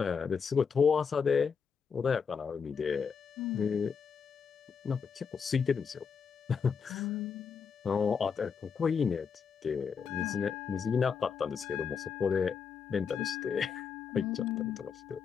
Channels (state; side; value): quieter; right; 6.2 dB